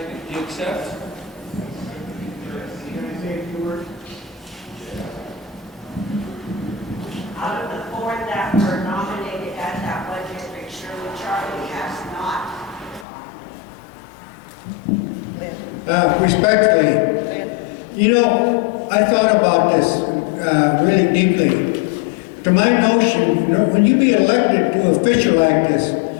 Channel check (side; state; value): right; drops out; at 13.1 s